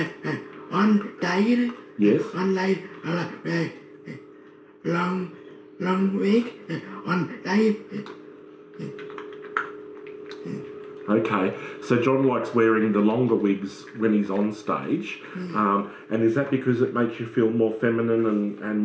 one day. Yes. One day I like wear long wig. One day. Okay, so John likes wearing the longer wigs when he's on stage, and is that because it makes you feel more feminine and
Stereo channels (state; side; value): identical; both; correlation 1.00